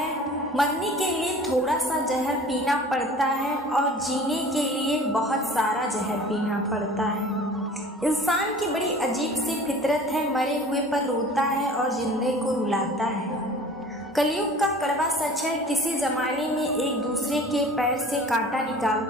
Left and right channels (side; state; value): both; normal; correlation 0.44